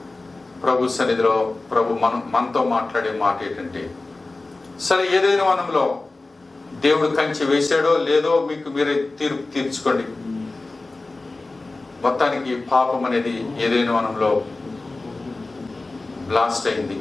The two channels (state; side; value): quieter; right; 3.2 dB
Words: ప్రభు సన్నిధిలో ప్రభు మనతో మాట్లాడే మాట ఏంటంటే, సరే ఏదైనా వనంలో దేవుడు కంచె వేసాడో లేదో మీకు మీరే తీర్చుకోండి. మొత్తానికి పాపం అనేది ఏదైనా వనంలో బ్లాస్ట్ అయింది,